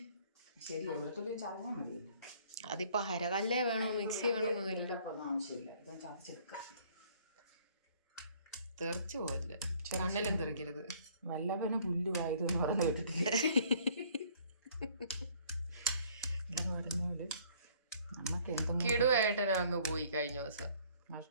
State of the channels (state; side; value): inverted; both; correlation -0.58